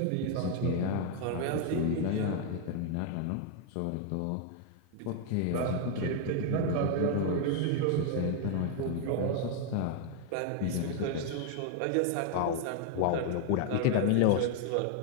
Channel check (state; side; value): different; both; correlation 0.00